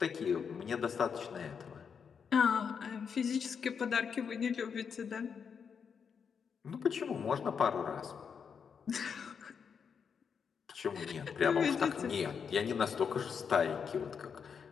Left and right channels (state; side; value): quieter; right; 6.6 dB